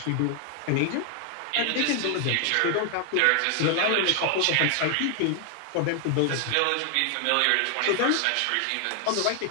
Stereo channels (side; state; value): both; different; correlation 0.00